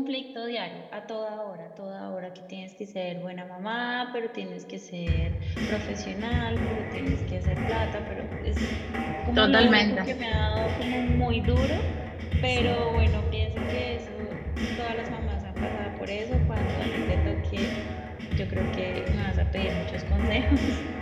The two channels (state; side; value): identical; both; correlation 1.00